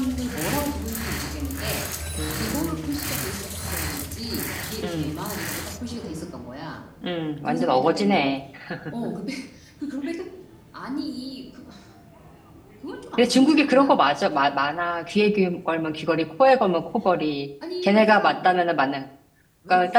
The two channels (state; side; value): identical; both; correlation 1.00